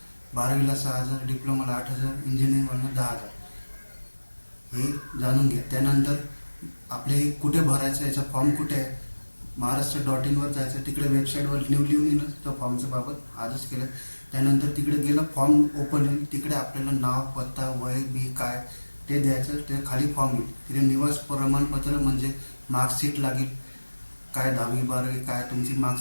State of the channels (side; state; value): both; inverted; correlation -1.00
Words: 12वीला 6,000, डिप्लोमाला 8,000, इंजिनिअरिंगला 10,000। हे जाणून घ्या। त्यानंतर आपले कुठे भरायचं, याचा फॉर्म कुठे आहे? महाराष्ट्र.in वर जायचं, तिकडे वेबसाईटवर लिहून येईल तो फॉर्मच्या बाबत आजच केलं। त्यानंतर तिकडे गेलं, फॉर्म ओपन होईल, तिकडे आपल्याला नाव, पत्ता, वय बी काय ते द्यायचं। ते खाली फॉर्म येईल, तिथे निवास प्रमाणपत्र म्हणजे मार्कशीट लागेल, काय 10वी 12वी काय तुमची